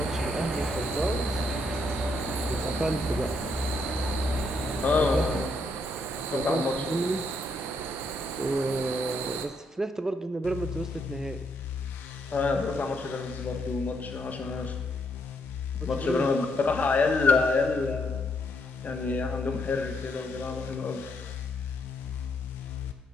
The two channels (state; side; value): normal; both; correlation 0.75